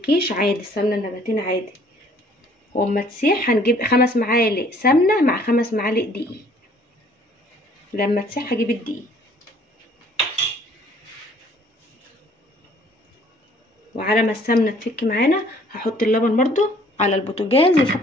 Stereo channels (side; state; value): both; normal; correlation 0.58